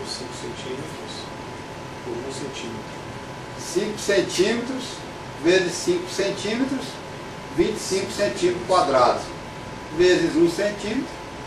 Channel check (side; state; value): both; identical; correlation 1.00